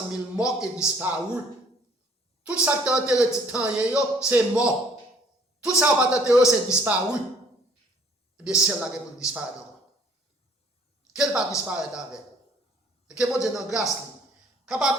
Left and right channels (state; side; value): normal; both; correlation 0.58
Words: 000 morts et disparus. Tout ça qui est enterré, c'est mort. Tout ça qui est enterré, c'est disparu. Eh bien, celle-là qui peut disparaître encore. Quelle va disparaître avec? Et que mon Dieu dans grâce,